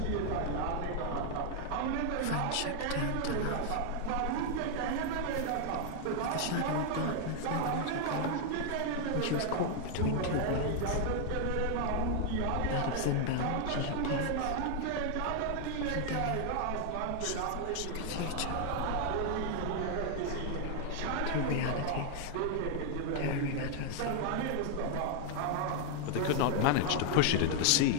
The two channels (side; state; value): both; different; correlation 0.00